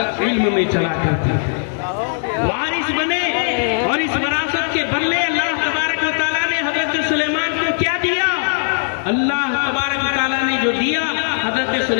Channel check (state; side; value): silent; right; digital silence